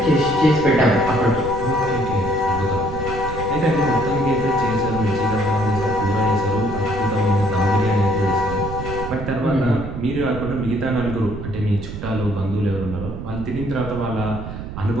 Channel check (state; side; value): noise; right; rumble, 8 dB below the sound